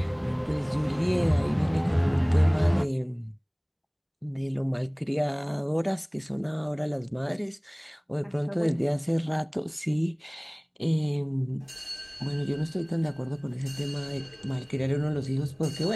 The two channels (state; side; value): identical; both; correlation 1.00